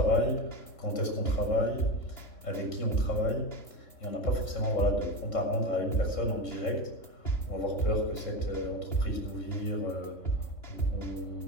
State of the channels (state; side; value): late; right; 2.9 ms